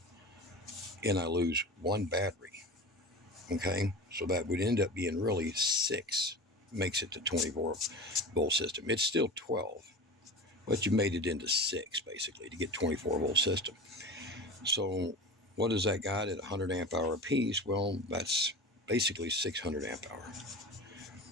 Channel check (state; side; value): normal; both; correlation 0.32